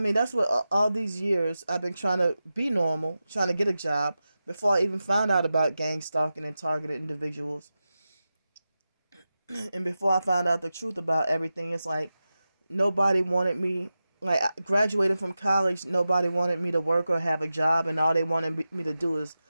that's what all these years I've been trying to be normal, trying to get a job before I even found out about gang stalking and targeted individuals. And before I found out the truth about everything, it's like nobody wanted me. Like, graduating from college, nobody wanted me to work or have a job, and all they wanted me to do is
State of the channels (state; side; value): inverted; both; correlation -0.93